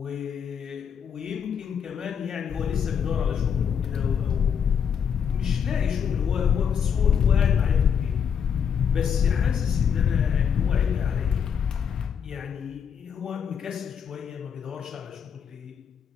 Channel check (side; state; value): right; quieter; 7.5 dB